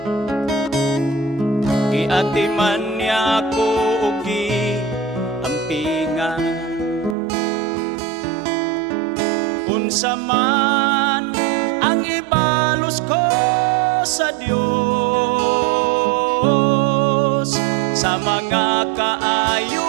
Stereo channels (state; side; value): drops out; left; at 7.2 s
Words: giatiman niya ako ug giampingan. Unsa man ang ibalos ko sa Dios, sa mga